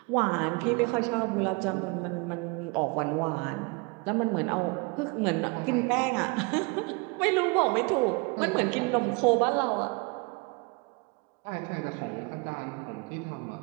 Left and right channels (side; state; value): left; quieter; 29.4 dB